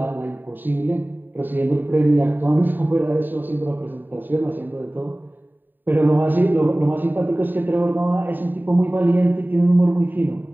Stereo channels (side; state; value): left; late; 0.091 ms